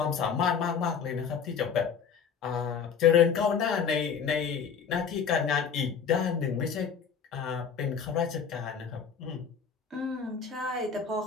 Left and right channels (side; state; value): right; quieter; 6.7 dB